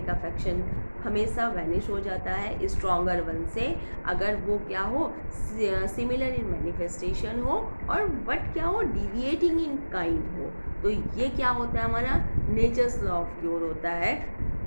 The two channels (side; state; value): both; inverted; correlation -1.00